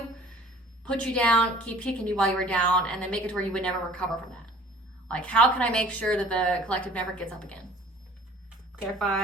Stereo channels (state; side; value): normal; both; correlation 0.49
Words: put you down, keep kicking you while you were down, and then make it to where you would never recover from that. Like, how can I make sure that the collective never gets up again?